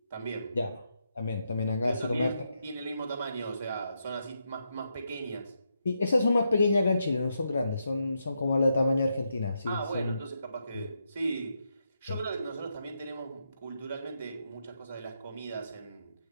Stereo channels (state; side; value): inverted; both; correlation -0.82